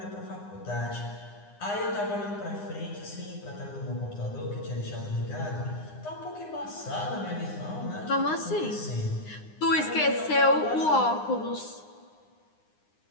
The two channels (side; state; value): right; late; 9.8 ms